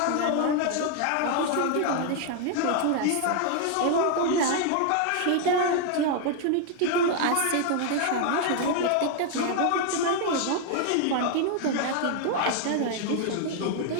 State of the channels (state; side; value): different; both; correlation 0.00